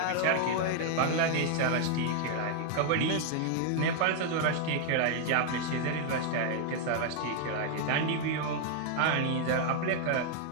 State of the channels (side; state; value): both; different; correlation 0.00